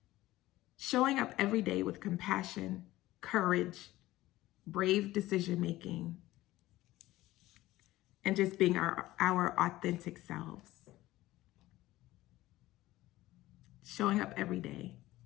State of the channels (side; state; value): right; quieter; 16.8 dB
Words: showing up every day with compassion, courage, brave decision-making, and just being our authentic selves. Showing up every day